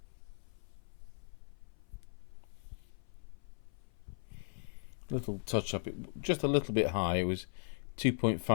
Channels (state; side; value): silent; right; 52 dB below the other